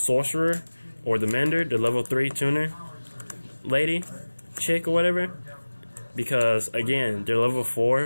or the Mender, the level 3 tuner lady, chick, or whatever. Because, again, they're level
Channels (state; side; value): inverted; both; correlation -1.00